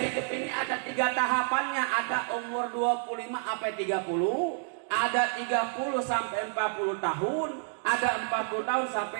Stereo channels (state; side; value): silent; left; 58 dB below the other